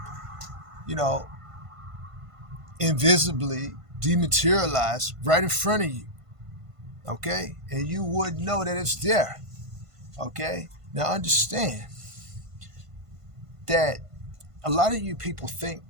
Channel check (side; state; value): left; late; 1.5 ms